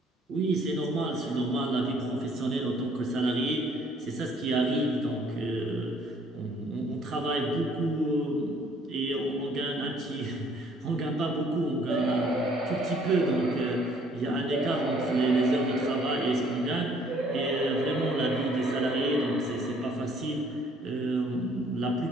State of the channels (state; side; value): normal; both; correlation 0.61